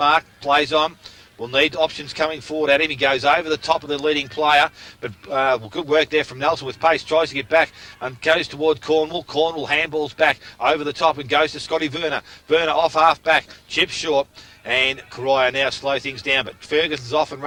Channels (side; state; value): both; identical; correlation 1.00